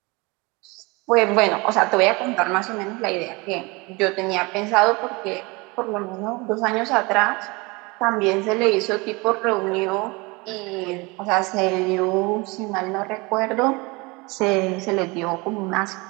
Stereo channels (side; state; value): left; quieter; 25.9 dB